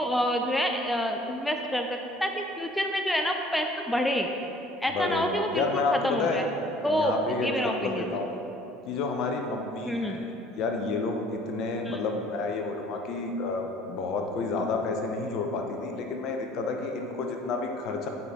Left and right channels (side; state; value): both; normal; correlation 0.54